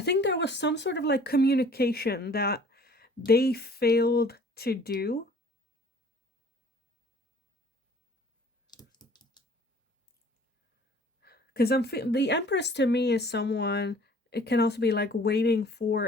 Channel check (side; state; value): both; normal; correlation 0.52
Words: there was some sort of like communication that they failed to do. Because the Empress to me is someone, it can also be like waiting for